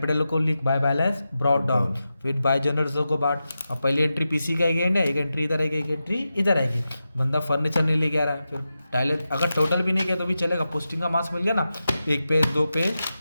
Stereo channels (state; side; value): inverted; both; correlation -0.91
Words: को लिख बाय बैलेंस ब्रॉट डाउन, फिर बाय जनरल को बांट। अब पहली एंट्री पीसी का है, एक एंट्री इधर आएगी, एक एंट्री इधर आएगी। बंदा फर्नीचर नहीं लेके आ रहा है, फिर टाइलर अगर टोटल भी नहीं किया तो भी चलेगा। पोस्टिंग का मार्क्स मिल गया ना, 1 पेज 2 पेज